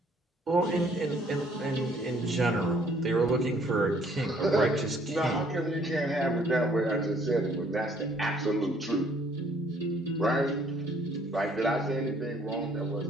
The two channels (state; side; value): normal; both; correlation 0.62